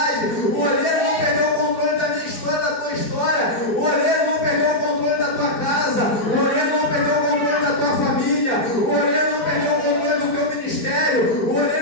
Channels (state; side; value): late; right; 4.1 ms